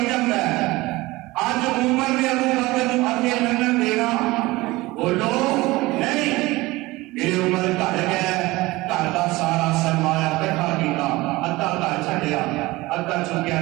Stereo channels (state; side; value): quieter; left; 20.5 dB